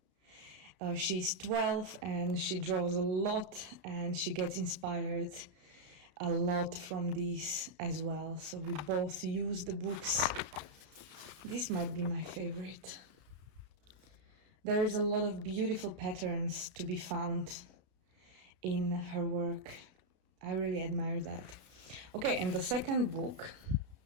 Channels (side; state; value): left; late; 33 ms